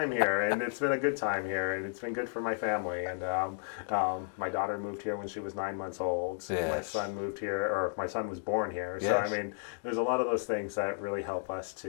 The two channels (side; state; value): right; silent; digital silence